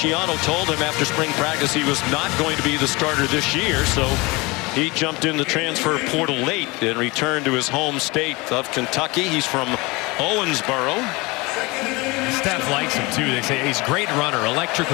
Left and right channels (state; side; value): quieter; right; 24.6 dB